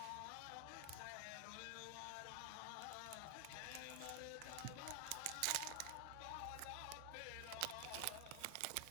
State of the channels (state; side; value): different; both; correlation 0.00